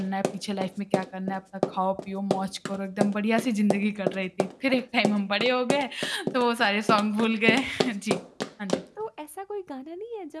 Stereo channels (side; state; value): both; identical; correlation 1.00